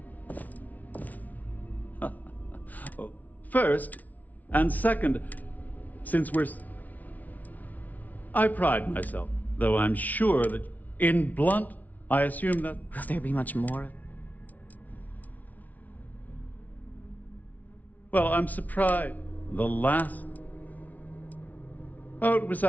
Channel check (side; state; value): right; late; 0.075 ms